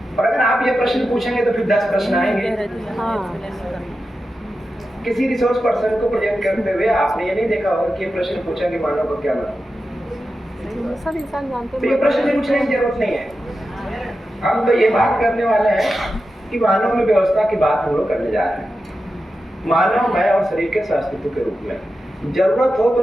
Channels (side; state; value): both; normal; correlation 0.91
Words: और अगर आप ये प्रश्न पूछेंगे तो फिर 10 प्रश्न आएंगे। किसी रिसोर्स पर्सन को प्रेजेंट करते हुए आपने ये नहीं देखा होगा कि ये प्रश्न पूछा कि मानव का क्या मतलब। सब इंसान जानते हैं, तो ये प्रश्न पूछने की जरूरत नहीं है। हम तो ये बात करने वाले हैं कि मानव में व्यवस्था की बात हम लोग करने जा रहे हैं। मानव मैं और शरीर के अस्तित्व के रूप में जरूरत हो तो